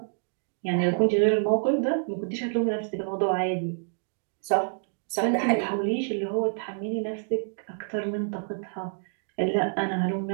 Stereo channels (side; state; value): left; silent; digital silence